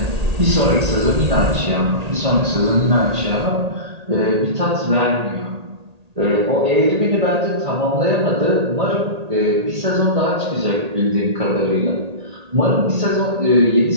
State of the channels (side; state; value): left; late; 1.8 ms